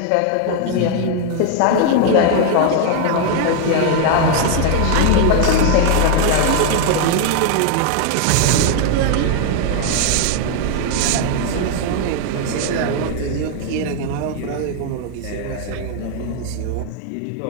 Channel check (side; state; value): both; different; correlation 0.00